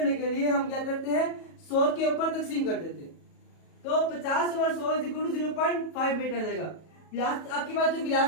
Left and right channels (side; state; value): right; late; 37 ms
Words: के लिए हम क्या करते हैं, 100 के ऊपर तकसीम कर देते हैं। तो 50 over 100 is equal to 0.5 metre आ जाएगा। आपके पास जो